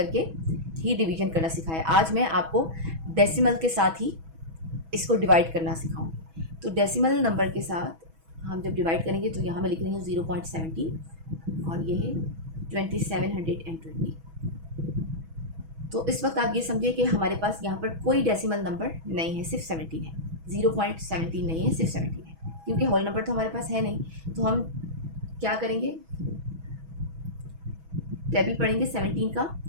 ही डिवीजन करना सिखाया। आज मैं आपको डेसिमल के साथ ही इसको डिवाइड करना सिखाऊंगी। तो डेसिमल नंबर के साथ हम जब डिवाइड करेंगे तो यहाँ मैं लिख रही हूँ 0.17 और ये है 2720। तो इस वक्त आप ये समझिए कि हमारे पास यहाँ पर कोई डेसिमल नंबर नहीं है, सिर्फ 17 है, 0.17 नहीं है, सिर्फ 17 है, क्योंकि होल नंबर तो हमारे पास है नहीं। तो हम क्या करेंगे, टेबल पढ़ेंगे 17 का,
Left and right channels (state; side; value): late; left; 6.2 ms